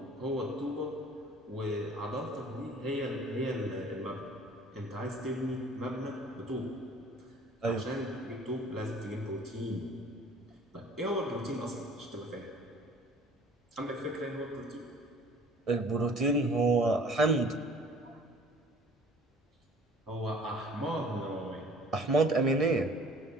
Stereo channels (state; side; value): normal; both; correlation 0.50